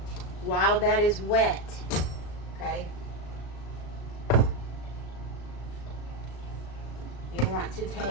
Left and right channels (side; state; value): right; late; 36 ms